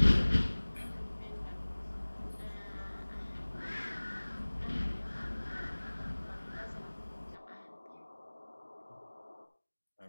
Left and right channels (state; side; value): inverted; both; correlation -1.00